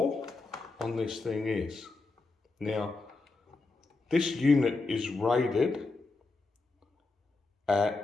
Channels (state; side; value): quieter; right; 3.6 dB